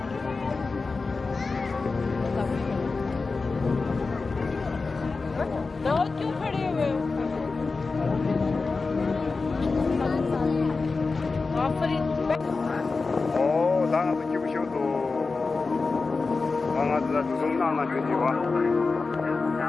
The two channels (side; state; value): right; quieter; 4.1 dB